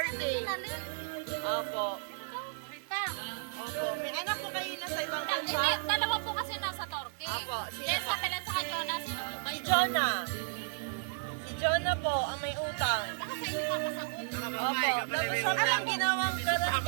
Opo. Rita. Opo. May anak po kayo na sa ibang bansa? Dalawa po kasi nasa Turkey. Apo. Yes, sa Pilan sa Jonah. Sino po ba Si yun? Jonah. Si Jonah po ang may utang. Baka sa inyo papasagot. Opo. Tapos siya po yung ginawang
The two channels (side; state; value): left; silent; 56 dB below the other